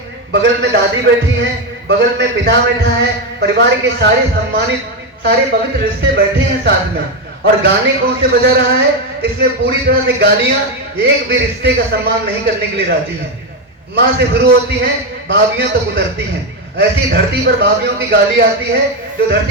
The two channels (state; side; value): normal; both; correlation 0.09